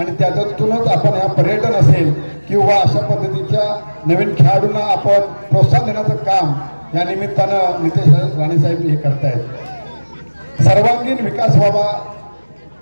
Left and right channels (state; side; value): inverted; both; correlation -1.00